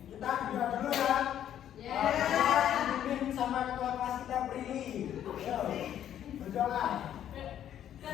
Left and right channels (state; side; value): quieter; right; 10.6 dB